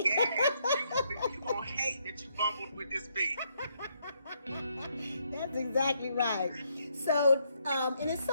you gonna hate that you bumbled with this beat. That's exactly right. So, and it's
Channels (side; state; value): both; inverted; correlation -0.74